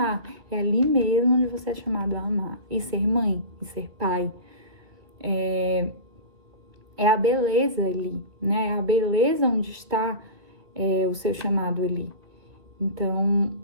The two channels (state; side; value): late; left; 2.1 ms